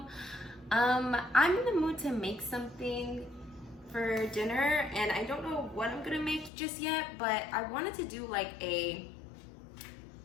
I'm in the mood to make something for dinner, and I don't know what I'm gonna make just yet, but I wanted to do like a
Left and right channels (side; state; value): right; drops out; at 6.5 s